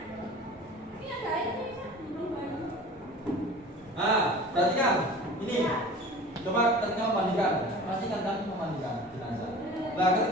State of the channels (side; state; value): both; normal; correlation 0.40